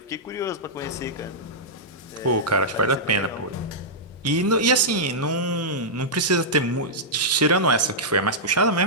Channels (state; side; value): normal; both; correlation -0.10